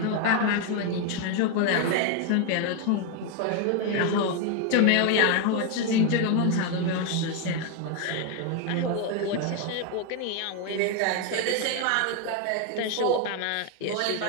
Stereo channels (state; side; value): different; both; correlation 0.01